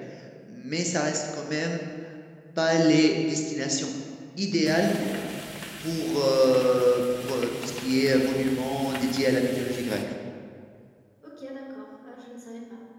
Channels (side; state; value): both; identical; correlation 1.00